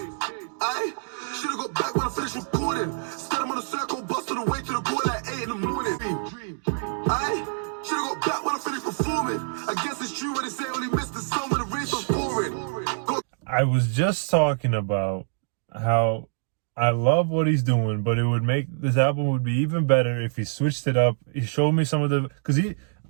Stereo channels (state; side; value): silent; left; digital silence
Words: I should've got back when I finished recording. Started on a circle, busted away to the goal at 8 in the morning. I should've got back when I finished performing. I guess it's true when they say only missed the sun when the race was pouring. I was just talking about how I love what he's doing, but it would make this album would be even better if he switched it up. He showed me some of the, because